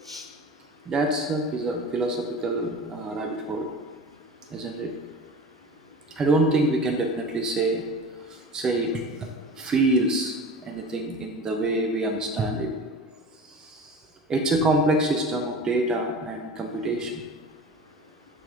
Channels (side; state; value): both; normal; correlation 0.35